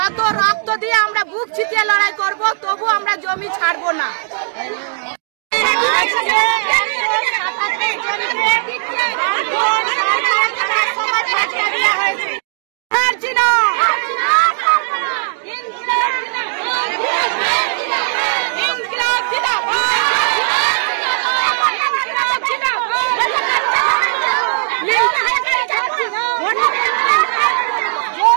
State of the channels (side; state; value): left; silent; digital silence